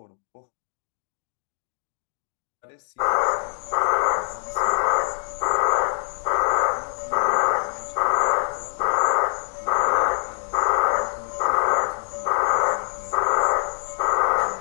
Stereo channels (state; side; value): silent; right; digital silence